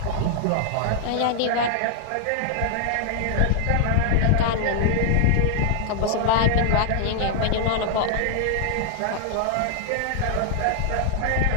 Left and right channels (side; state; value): both; different; correlation 0.00